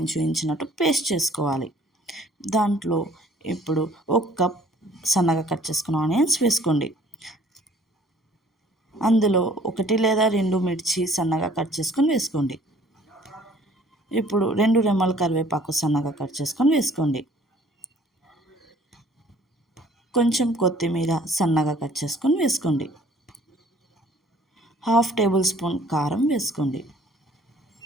చూయించినట్టు పేస్ట్ చేసుకోవాలి. దాంట్లో ఇప్పుడు ఒక కప్ సన్నగా కట్ చేసుకున్న ఆనియన్స్ వేసుకోండి. అందులో 1 లేదా 2 మిర్చి సన్నగా కట్ చేసుకొని వేసుకోండి. ఇప్పుడు 2 రెమ్మల కరివేపాకు సన్నగా కట్ చేసుకొని వేసుకోండి. కొంచెం కొత్తిమీర సన్నగా కట్ చేసుకొని వేసుకోండి. హాఫ్ టేబుల్ స్పూన్ కారం వేసుకోండి.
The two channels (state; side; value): normal; both; correlation 0.56